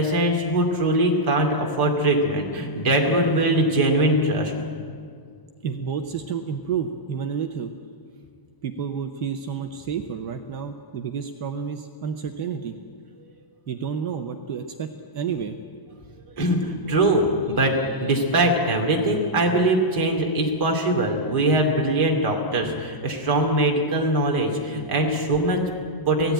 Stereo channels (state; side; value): late; right; 1.0 ms